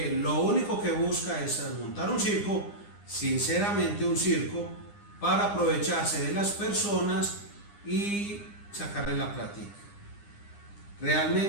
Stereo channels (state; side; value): late; right; 9.8 ms